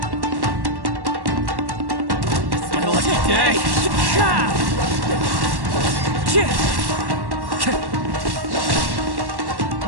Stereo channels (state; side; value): late; left; 1.1 ms